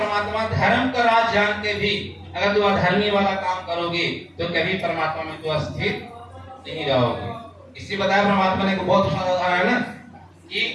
धर्म का राज जान के भी अगर तू अधर्मी वाला काम करोगे तो कभी परमात्मा में तू स्थिर नहीं रहोगे। इसी बताया परमात्मा ने को बहुत उदाहरण है ना कि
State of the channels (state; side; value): identical; both; correlation 1.00